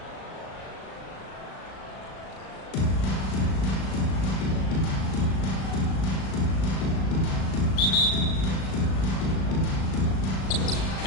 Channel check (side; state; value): right; late; 37 ms